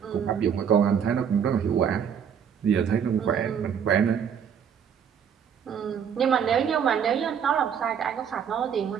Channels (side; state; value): left; quieter; 7.9 dB